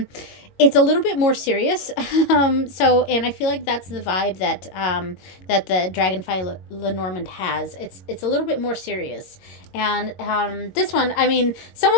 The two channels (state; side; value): late; right; 22 ms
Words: it's a little bit more serious. And I feel like that's the vibe that that the Dragonfly Lenormand has. It's a little bit more serious. And this one, I mean, some